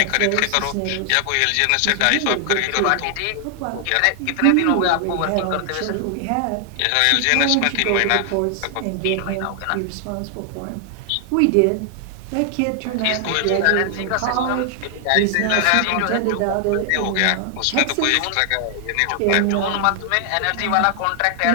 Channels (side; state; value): both; different; correlation 0.00